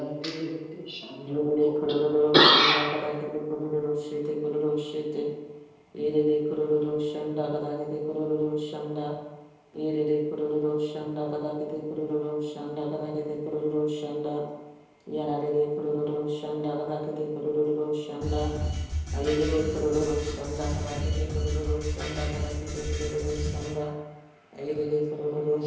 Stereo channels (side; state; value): both; identical; correlation 1.00